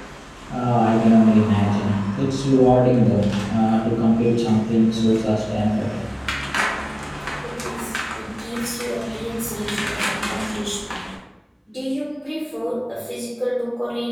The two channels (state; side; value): identical; both; correlation 1.00